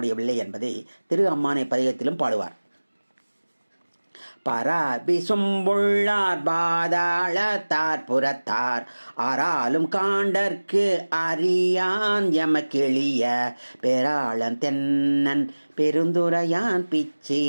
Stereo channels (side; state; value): both; inverted; correlation -1.00